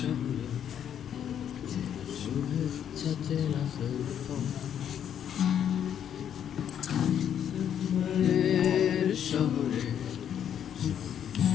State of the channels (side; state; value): right; quieter; 9.3 dB